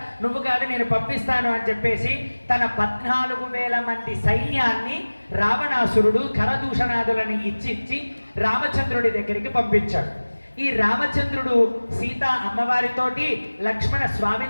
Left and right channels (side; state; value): both; inverted; correlation -1.00